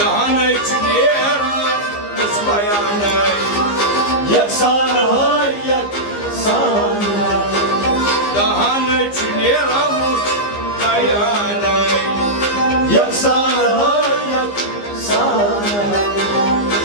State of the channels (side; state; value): right; late; 15 ms